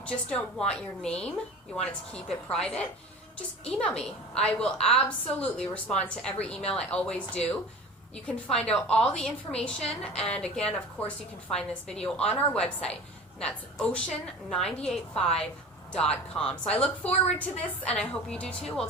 just don't want your name, you want it to keep it private, just email me. I will absolutely respond to every email. I always do. You can find out all the information, and again, of course, you can find this video on our website, and that's ocean985.com. So I look forward to this, and I hope you do too. We'll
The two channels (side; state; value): both; normal; correlation 0.37